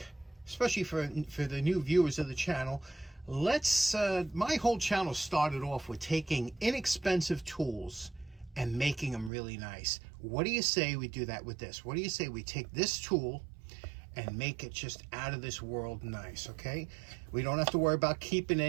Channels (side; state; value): left; drops out; at 9.3 s